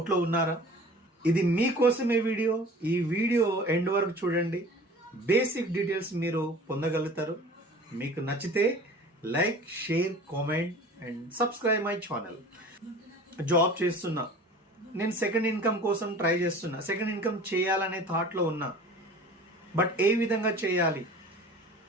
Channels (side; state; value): both; normal; correlation 0.43